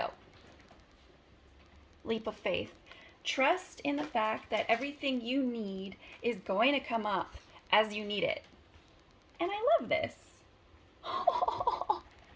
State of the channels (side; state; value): both; identical; correlation 1.00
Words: Leap of faith. Trust in the fact that everything you need is going to come up as you need it. And I love this.